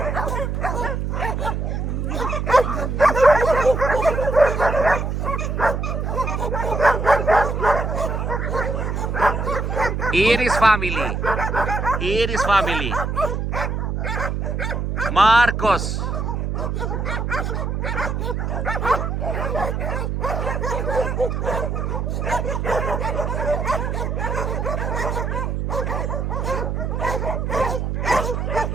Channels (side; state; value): right; noise; hum, 1 dB below the sound